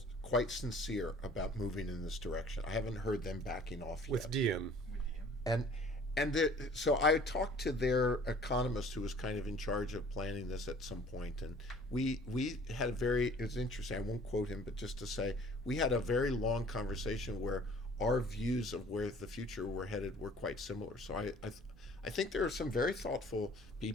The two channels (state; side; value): normal; both; correlation 0.51